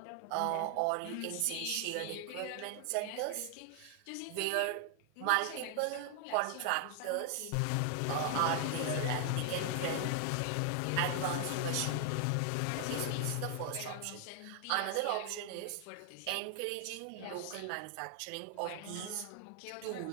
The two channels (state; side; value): different; both; correlation 0.00